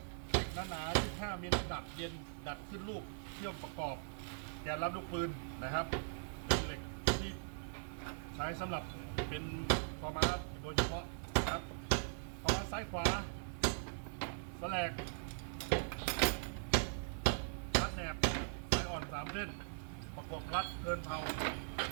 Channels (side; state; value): left; silent; 51 dB below the other